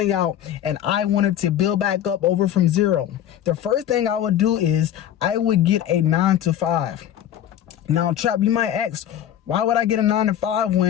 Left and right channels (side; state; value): right; quieter; 10.9 dB